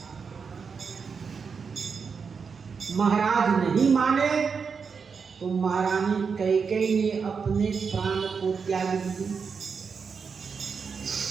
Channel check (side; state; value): left; quieter; 5.7 dB